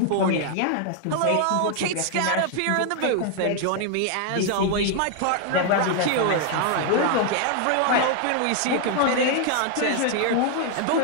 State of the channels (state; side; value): different; both; correlation 0.00